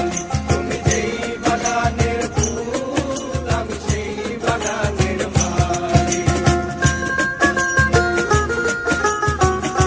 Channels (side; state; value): both; identical; correlation 1.00